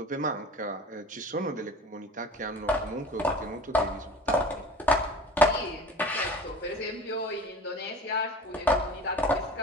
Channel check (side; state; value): both; normal; correlation 0.41